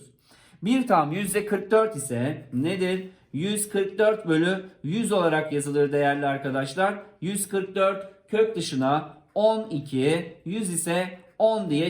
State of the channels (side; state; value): both; identical; correlation 1.00